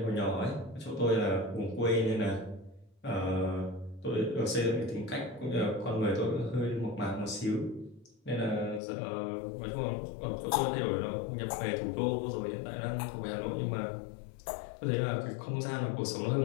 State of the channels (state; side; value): drops out; right; at 8.8 s